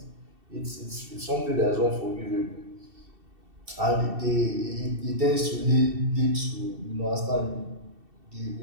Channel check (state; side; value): late; left; 2.7 ms